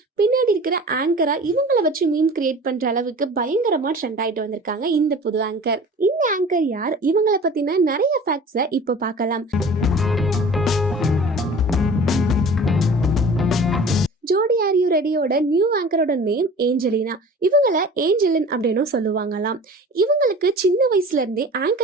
பின்னாடி இருக்கிற ஆங்கரா இவங்களை வச்சு மீம் கிரியேட் பண்ற அளவுக்கு பயங்கரமா ட்ரெண்ட் ஆயிட்டு வந்திருக்காங்க இந்த புது ஆங்கர். இந்த ஆங்கர் யார், இவங்களை பத்தின நிறைய ஃபேக்ட்ஸை இப்போ பார்க்கலாம். ஜோடி ஆர் யூ ரெடியோட நியூ ஆங்கரோட நேம் ஏஞ்சலினா. இவங்கள ஏஞ்சலின் அப்படின்னு சொல்லுவாங்களாம். இவங்களுக்கு சின்ன வயசுல இருந்தே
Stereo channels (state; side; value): normal; both; correlation 0.42